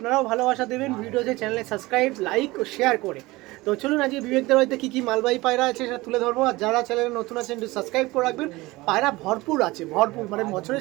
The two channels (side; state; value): left; quieter; 20.7 dB